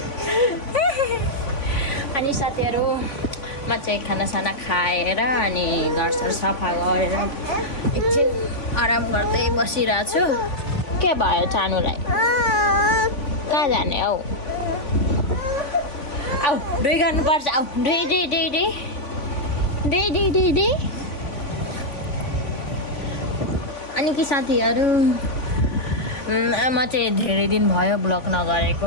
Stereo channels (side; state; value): right; late; 3.5 ms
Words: अनि साथीहरु म चाहिँ खानासाना खाएर अनि घरसर सफा गरेर एकछिन आराम गर्दै बसिरहेको छु। के भयो चानुलाई? कहाँ जाने हौ? आऊ दुई गर्नुपर्छ। आऊ दुई। अनि कि साथीहरु म चाहिँ धेरै दिन भयो ब्लग नगरेको